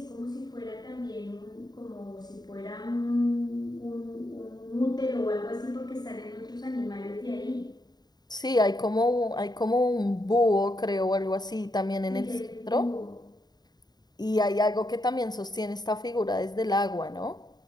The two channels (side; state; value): right; late; 0.20 ms